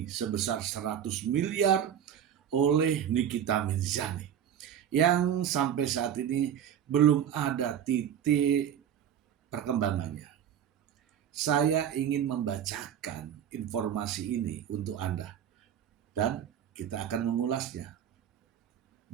sebesar 100 miliar oleh Nikita Mirzani yang sampai saat ini belum ada titik perkembangannya. Saya ingin membacakan informasi ini untuk Anda dan kita akan mengulasnya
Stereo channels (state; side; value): quieter; left; 9.4 dB